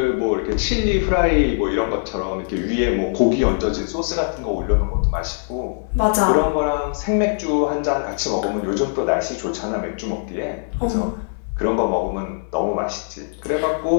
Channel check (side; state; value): right; silent; digital silence